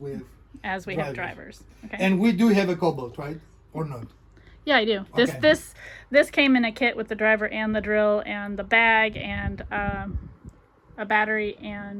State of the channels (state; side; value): identical; both; correlation 1.00